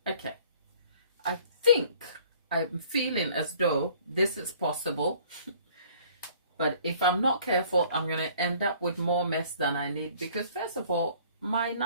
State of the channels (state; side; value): inverted; both; correlation -0.54